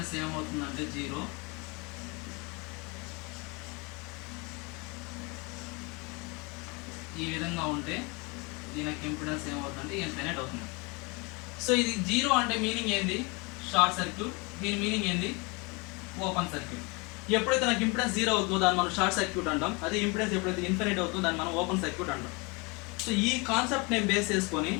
ఏమవుతుందంటే 0. ఈ విధంగా ఉంటే దీనికి ఇంపిడెన్స్ ఏమవుతుందంటే ఇన్ఫినిట్ అవుతుంది. సో ఇది 0 అంటే మీనింగ్ ఏంది? Short circuit. దీని మీనింగ్ ఏంది? Open circuit. ఎప్పుడైతే నాకు ఇంపిడెన్స్ 0 అవుతుందో దాన్ని మనం షార్ట్ సర్క్యూట్ అంటాం. అదే ఇంపిడెన్స్ ఎప్పుడైతే ఇన్ఫినిట్ అవుతుందో దాన్ని మనం ఓపెన్ సర్క్యూట్ అంటాం. సో ఈ కాన్సెప్ట్ నేను బేస్ చేసుకొని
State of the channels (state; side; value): quieter; right; 28.8 dB